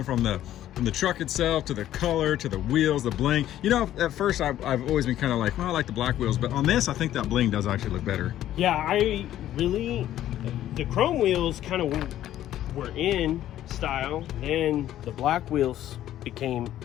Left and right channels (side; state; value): right; quieter; 12.5 dB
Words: from the from the truck itself to the color to the wheels, the bling. You know, at first I've always been kind of like, well, I like the black wheels, but on this I think that bling does actually look better. Yeah, the chrome wheels kind of were in style, then the black wheels became